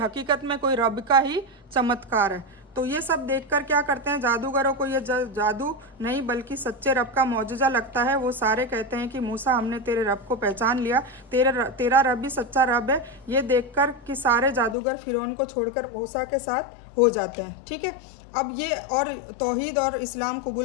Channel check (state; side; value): drops out; right; at 14.8 s